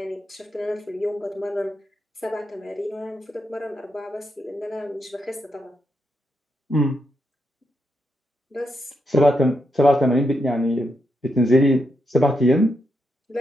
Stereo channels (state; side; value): normal; both; correlation 0.82